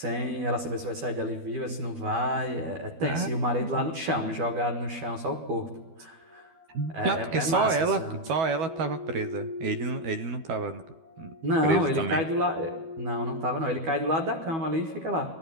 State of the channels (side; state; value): left; late; 12 ms